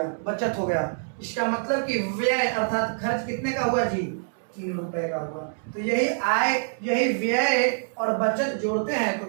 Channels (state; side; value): silent; left; 61 dB below the other